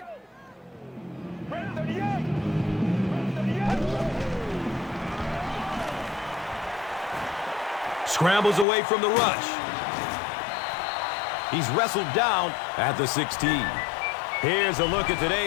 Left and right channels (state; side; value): drops out; right; at 8.7 s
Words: Scrambles away from the rush. He's wrestled down at the 16. Here's a look at